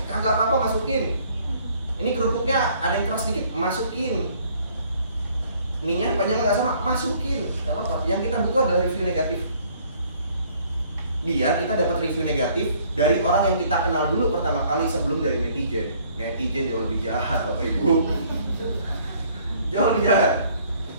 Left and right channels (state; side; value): inverted; both; correlation -0.60